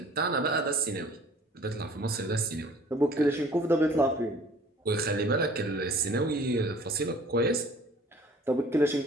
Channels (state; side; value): normal; both; correlation 0.51